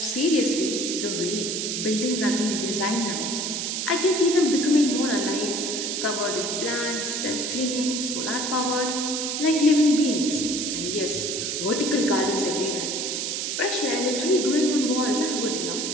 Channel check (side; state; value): right; noise; hiss, 2 dB below the sound